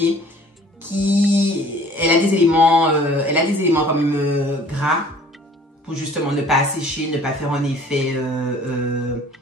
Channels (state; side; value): normal; both; correlation 0.52